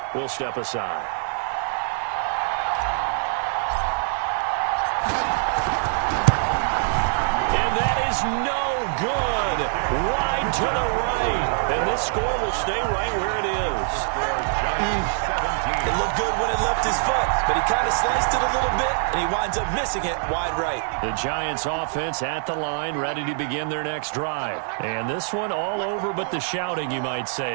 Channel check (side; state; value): left; silent; 63 dB below the other